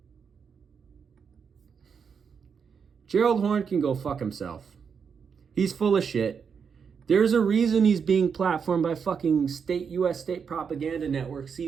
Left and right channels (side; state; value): left; quieter; 6.4 dB